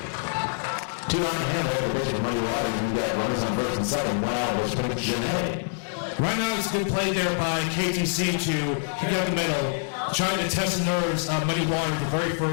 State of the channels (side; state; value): right; silent; digital silence